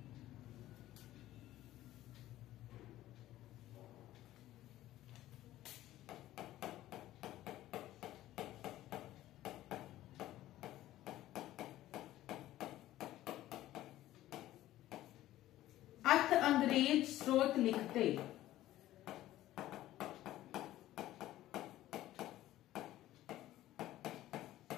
अथ अंग्रेज स्रोत लिखते।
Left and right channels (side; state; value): right; quieter; 14.6 dB